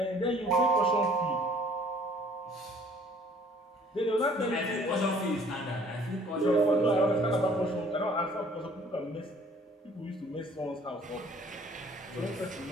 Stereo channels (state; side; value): normal; both; correlation 0.55